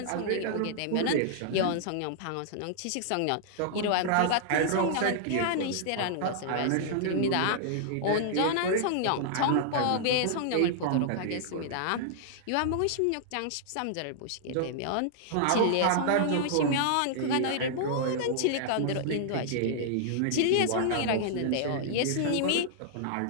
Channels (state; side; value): different; both; correlation -0.01